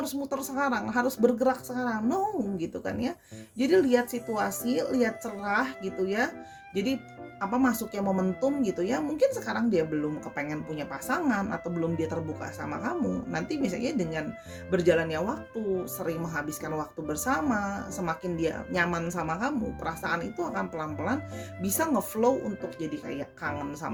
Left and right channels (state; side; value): identical; both; correlation 1.00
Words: harus muter sekarang, harus bergerak sekarang. No, gitu kan ya. Jadi lihat situasi, lihat cerah gitu ya. Jadi masuknya momentum gitu ya. Mungkin sekarang dia belum kepengen punya pasangan atau belum dia terbuka sama kamu. Nanti misalnya dengan berjalannya waktu, sering menghabiskan waktu bersama, semakin dia nyaman sama kamu, perasaan itu akan pelan-pelan bisa ngeflow untuk jadi kayak kangen